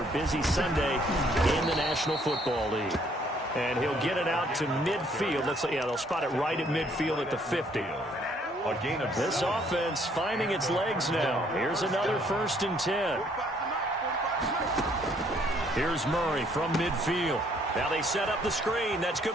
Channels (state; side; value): normal; both; correlation 0.65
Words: busy Sunday in the National Football League. And he'll get it out to midfield. They'll spot it right at midfield at the 50. A gain of This offense finding its legs now. Here's another 1st and 10. Here's Murray from midfield. Now they set up the screen. That's